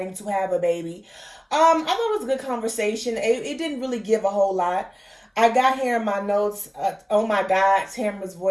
to have a baby. I thought it was a good conversation. It didn't really give a whole lot. I got here in my notes, oh my God, Tamra's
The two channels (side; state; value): both; identical; correlation 1.00